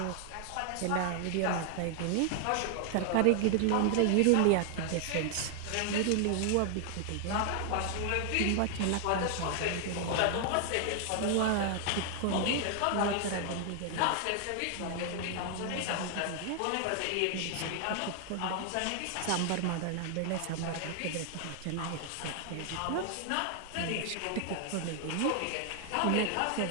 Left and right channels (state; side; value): different; both; correlation 0.00